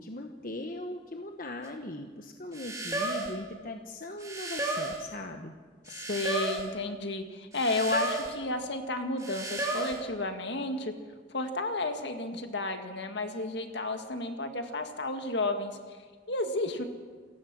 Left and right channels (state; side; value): normal; both; correlation -0.04